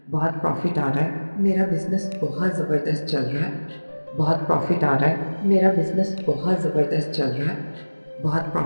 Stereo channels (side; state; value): both; inverted; correlation -1.00